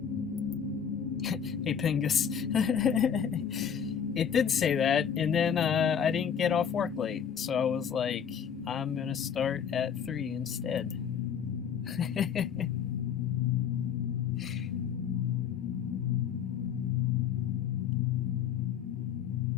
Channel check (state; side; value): quieter; right; 7.9 dB